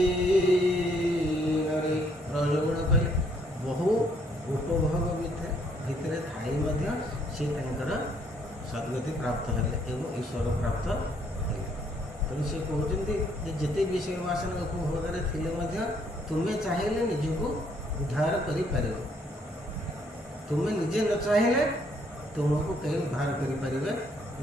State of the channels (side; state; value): both; normal; correlation 0.68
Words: ରଜଗୁଣ କହିଲେ ବହୁ ଉପଭୋଗ ଭିତରେ ଥାଇ ମଧ୍ୟ ସେ ତାଙ୍କର ସଦ୍ଗତି ପ୍ରାପ୍ତ ହେଲେ ଏବଂ ଈଶ୍ୱର ପ୍ରାପ୍ତ ହେଲେ। ତେଣୁ ସେ କହୁଛନ୍ତି ଯେ ଯେତେ ବିଷୟ ବାସନା ଉପଭୋଗରେ ଥିଲେ ମଧ୍ୟ ତୁମେ ଚାହିଁଲେ ନିଜକୁ ଉଦ୍ଧାର କରିପାରିବ, ତୁମେ ନିଜେ ନ ଚାହିଁଲେ ତୁମକୁ କେହି ଉଦ୍ଧାର କରିପାରିବେ